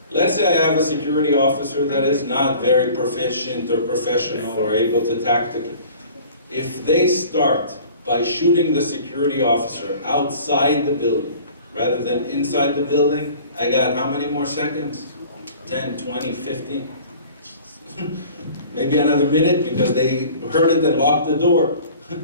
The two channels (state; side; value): inverted; both; correlation -0.47